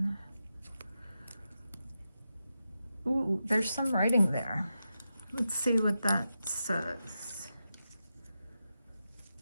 Ooh, there's some writing there. Let's see what that says.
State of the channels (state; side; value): inverted; both; correlation -0.89